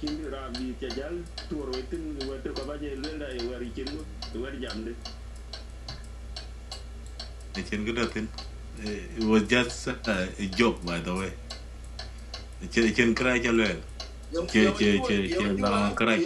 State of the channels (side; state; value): both; identical; correlation 1.00